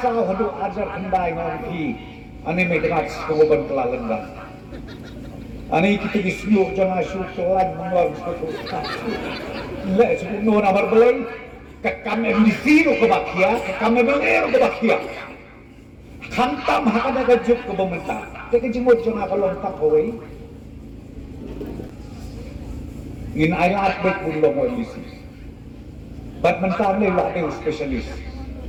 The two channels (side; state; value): both; identical; correlation 1.00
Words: hadu ajar kendai ngaki. Ani may dengar sekoban kelalengan. Ani kita disebut jangan syukuran mengulang sesuatu. Lek sebut nuan amar belai, kekam MDC ke bakia, kekam MLA ke bakia. Hantam hakada gajuk ke pemerintah. Jadi jemut jangan kalau tak kawai. Ngin ayat baik pun lo MDC. Bat mentah ni lah dia spesialis.